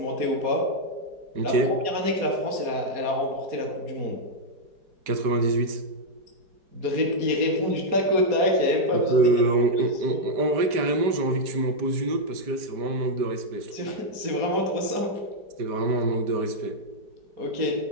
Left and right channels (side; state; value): left; late; 5.1 ms